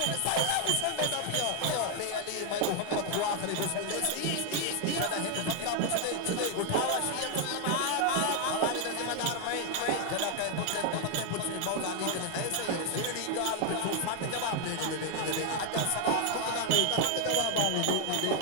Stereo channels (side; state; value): both; different; correlation 0.00